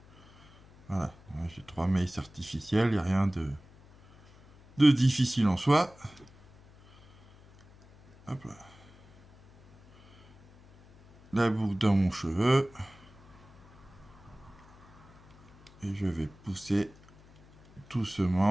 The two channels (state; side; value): noise; left; hum, 25 dB below the sound